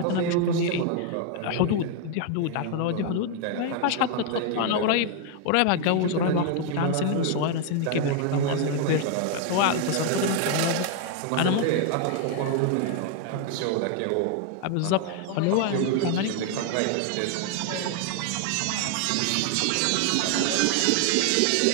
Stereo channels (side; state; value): both; different; correlation 0.00